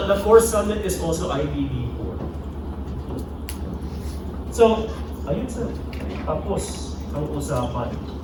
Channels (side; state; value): both; identical; correlation 1.00